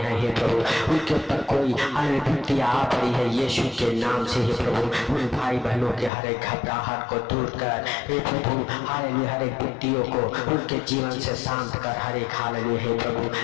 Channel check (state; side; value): drops out; right; at 6.1 s